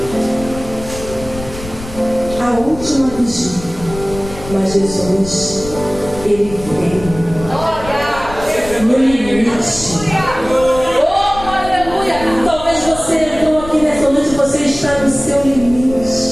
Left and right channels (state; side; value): noise; left; rumble, 13 dB below the sound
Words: A última vigília. Mas Jesus, ele veio no limite. Oh, aleluia! Talvez você entrou aqui nessa noite e você está no seu limite.